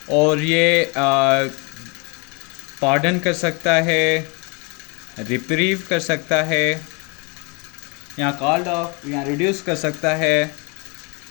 और ये पार्डन कर सकता है, रिप्रीव कर सकता है, या कॉल्ड ऑफ या रिड्यूस कर सकता है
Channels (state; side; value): quieter; right; 31.9 dB